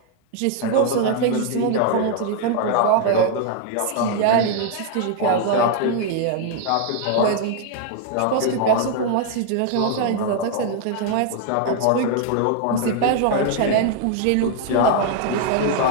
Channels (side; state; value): both; different; correlation 0.00